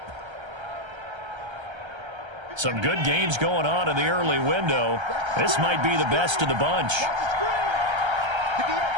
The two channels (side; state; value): left; late; 1.3 ms